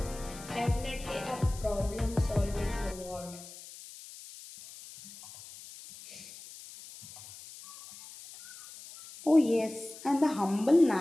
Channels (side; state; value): left; noise; hiss, 16 dB below the sound